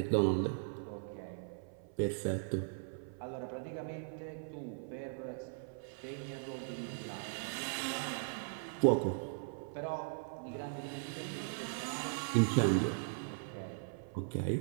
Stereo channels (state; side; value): silent; left; 52 dB below the other